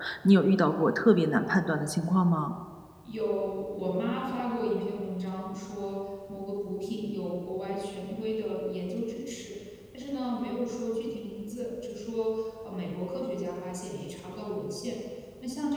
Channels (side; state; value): both; identical; correlation 1.00